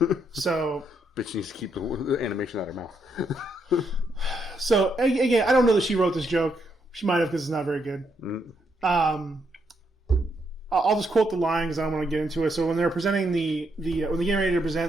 So, Bitch needs to keep the animation out of her mouth. again, I don't know that she wrote this joke. She might have because it's not very good. I'll just quote the line because I don't want to get into it. So when they're presenting when they're getting ready to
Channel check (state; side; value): normal; both; correlation 0.77